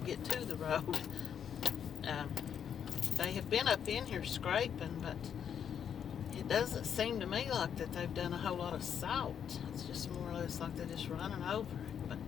to the road. They have been up in here scraping, but it doesn't seem to me like that they've done a whole lot of salt. It's just more or less like they're just running over it. But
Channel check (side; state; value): right; quieter; 8.2 dB